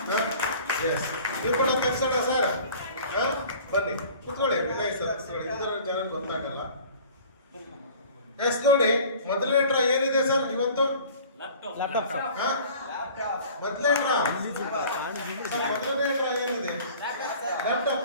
ಎಸ್, ನೀವು ಕೂಡ ತರ್ಸೋಣ ಸರ್. ಬನ್ನಿ, ಕುತ್ಕೊಳ್ಳಿ. ವಿನಯ್ ಸರ್ ಇದರ ಜನ ಗೊತ್ತಾಗಲ್ಲ. ಎಸ್, ನೋಡಿ ಮೊದಲನೇ ಡ್ರಾ ಏನಿದೆ ಸರ್ ಇವತ್ತು? ಲ್ಯಾಪ್ಟಾಪ್. ಮೊದಲನೇ ಡ್ರಾ ಏನಿದೆ?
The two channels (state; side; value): inverted; both; correlation -0.46